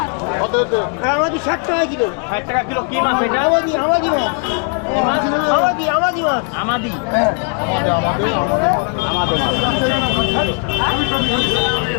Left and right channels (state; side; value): quieter; right; 38.6 dB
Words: কত হতে? আমাদি 60 টাকা কিলো। 60 টাকা কিলো। কি মাছ এটা? আমাদি মাছ। কি মাছ? আমাদি মাছ। আমাদি। হ্যাঁ, আমাদের মাছ।